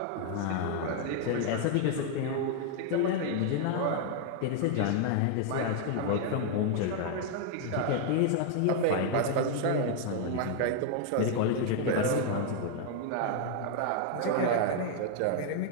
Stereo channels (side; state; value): both; different; correlation 0.00